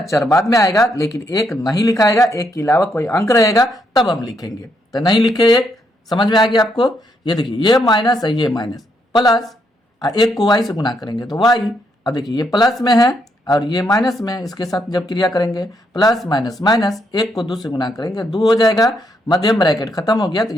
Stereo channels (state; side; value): normal; both; correlation 0.76